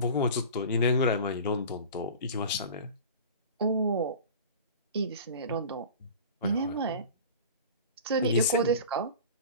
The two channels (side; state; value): both; inverted; correlation -0.36